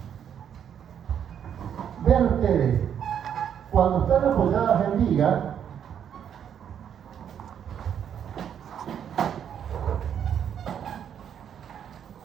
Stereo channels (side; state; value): left; quieter; 8.8 dB